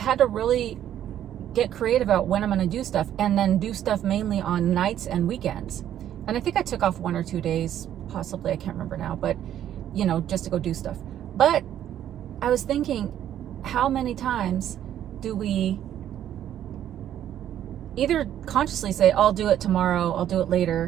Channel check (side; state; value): left; quieter; 11.0 dB